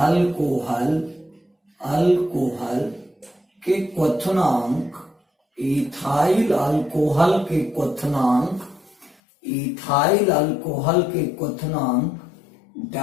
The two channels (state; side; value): drops out; right; at 9.2 s